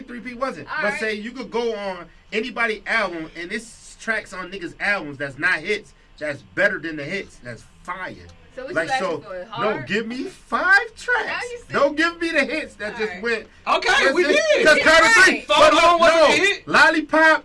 3P wasn't, All but right. say you could go on anybody album and it's tracks on niggas' albums that's not hits, that's better than the hits, that's fire. So what Like you asking so, for? no, Hard? give me 5 Now tracks. you said- Don't give me the hits that All just right. went. Okay, we did. Because Carter Right. 3, Phone but home wasn't no, a hit. Lollipop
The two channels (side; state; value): both; identical; correlation 1.00